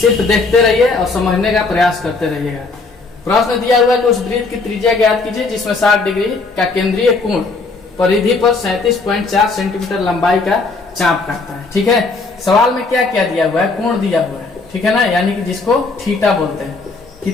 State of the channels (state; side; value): quieter; right; 3.9 dB